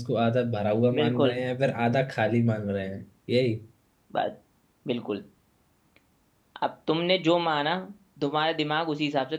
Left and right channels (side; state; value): both; identical; correlation 1.00